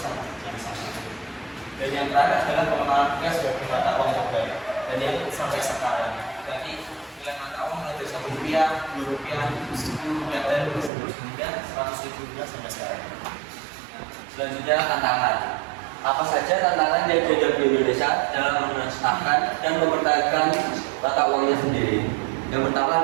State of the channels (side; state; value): left; drops out; at 10.9 s